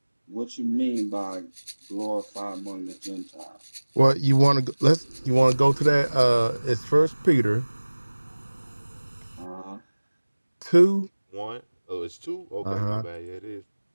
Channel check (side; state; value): both; inverted; correlation -1.00